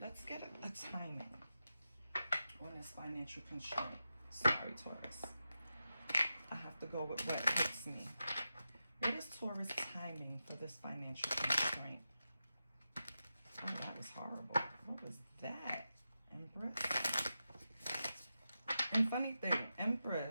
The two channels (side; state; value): both; inverted; correlation -0.90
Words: get a timing on this financial constraint. Sorry, Taurus. I have to go with what hits me. What is Taurus timing for this financial constraint? Oh, that was horrible. What was that? Empress? And funny thing,